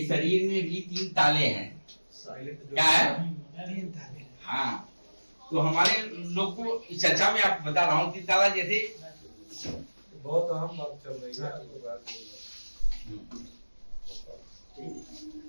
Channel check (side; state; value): both; inverted; correlation -1.00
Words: शरीर में भी 3 ताले हैं। क्या है? हाँ, तो हमारे लोग को इस चर्चा में आप बता रहा हूँ 3 ताला। जैसे बहुत अहम बात चल रही है,